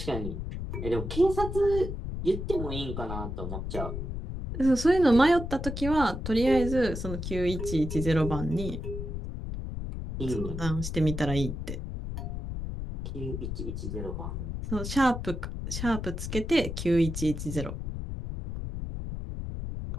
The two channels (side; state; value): left; noise; rumble, 5 dB below the sound